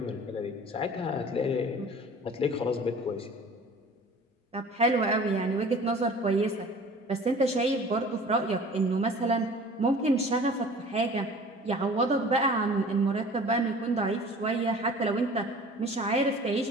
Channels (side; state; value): both; normal; correlation 0.45